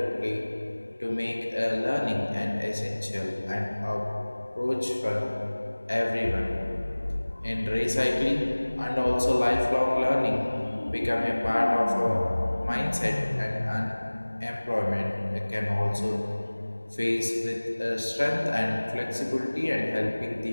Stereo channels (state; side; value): inverted; both; correlation -1.00